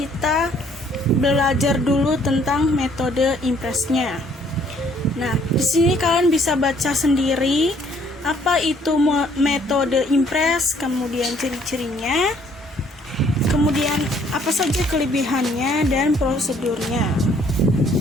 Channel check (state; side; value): normal; both; correlation 0.63